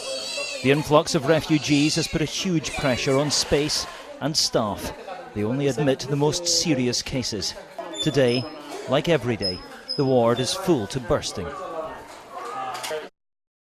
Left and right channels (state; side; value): identical; both; correlation 1.00